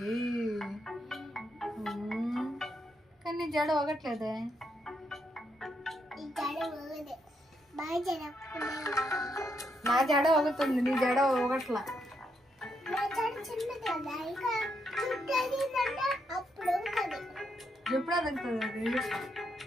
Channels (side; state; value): both; normal; correlation 0.79